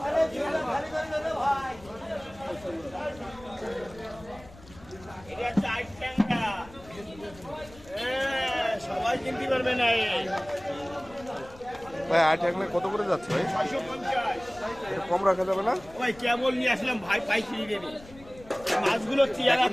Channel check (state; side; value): noise; left; rumble, 21 dB below the sound